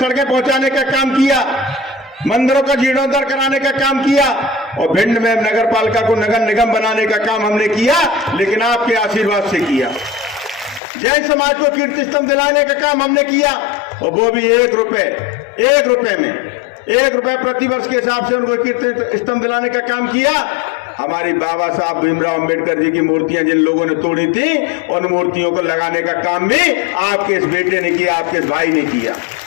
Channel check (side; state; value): right; drops out; at 10.8 s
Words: पहुंचाने का काम किया, मंदिरों का जीर्णोद्धार कराने का काम किया, और भिंड में नगर पालिका को नगर निगम बनाने का काम हमने किया, लेकिन आपके आशीर्वाद से किया। जैन समाज को कीर्ति स्तंभ दिलाने का काम हमने किया, और वो भी 1 रुपए में 1 रुपए प्रतिवर्ष के हिसाब से उनको कीर्ति स्तंभ दिलाने का काम किया। हमारी बाबा साहब भीमराव अंबेडकर जी की मूर्तियां जिन लोगों ने तोड़ी थी, उन मूर्तियों को लगाने का काम भी आपके इस बेटे ने किया, आपके इस भाई ने किया।